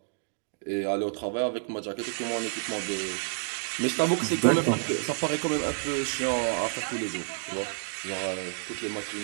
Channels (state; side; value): silent; left; digital silence